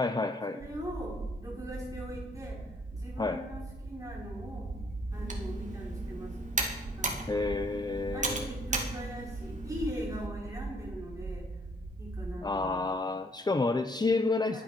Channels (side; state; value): both; normal; correlation 0.65